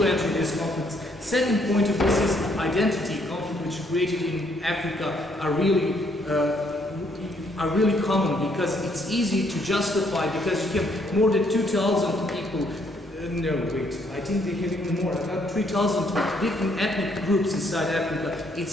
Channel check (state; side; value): normal; both; correlation 0.69